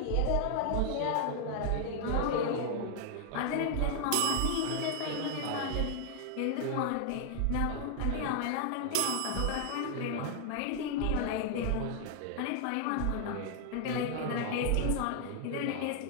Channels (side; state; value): both; different; correlation 0.00